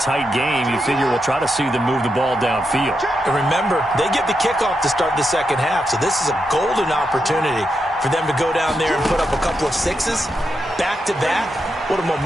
tight game, you figure we'll try to see them move the ball downfield. And remember, they get the kickoff to start the second half, so this is a golden opportunity for them to go down there and put up a couple of sixes back-to-back. What a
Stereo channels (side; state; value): both; normal; correlation 0.84